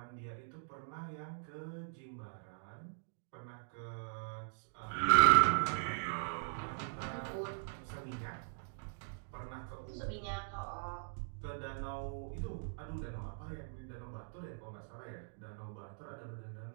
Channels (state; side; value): silent; left; digital silence